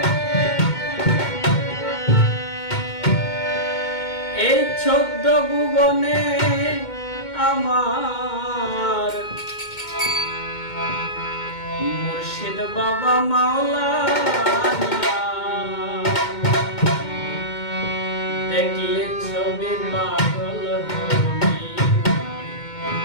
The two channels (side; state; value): right; late; 2.2 ms